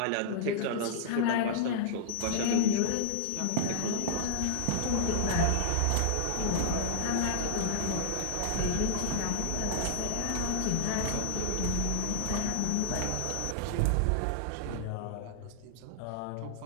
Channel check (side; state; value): both; different; correlation -0.01